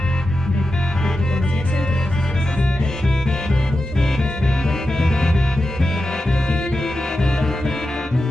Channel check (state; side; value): normal; both; correlation 0.90